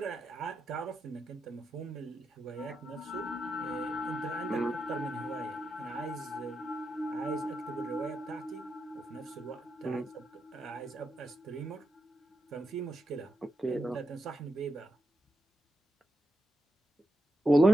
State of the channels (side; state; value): both; normal; correlation 0.87